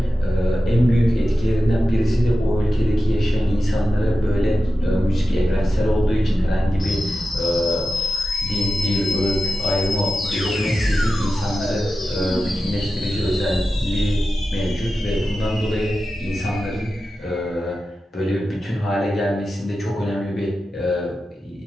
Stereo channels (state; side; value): normal; both; correlation 0.93